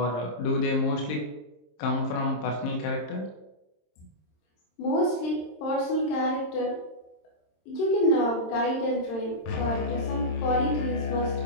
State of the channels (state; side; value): late; right; 26 ms